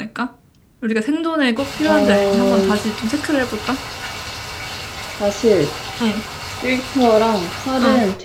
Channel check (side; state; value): both; identical; correlation 1.00